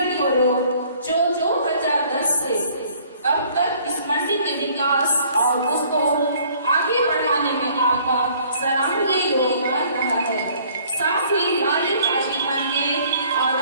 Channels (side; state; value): both; inverted; correlation -0.58